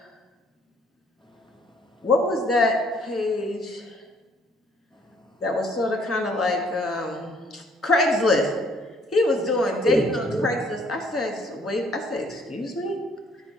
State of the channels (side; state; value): both; normal; correlation 0.63